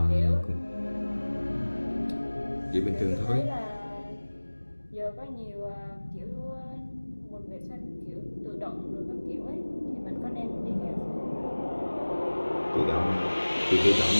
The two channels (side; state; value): both; inverted; correlation -1.00